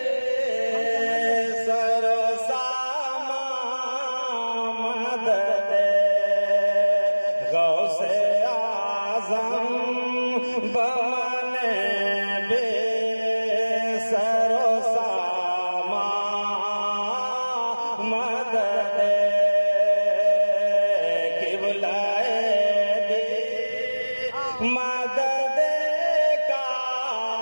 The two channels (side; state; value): both; inverted; correlation -1.00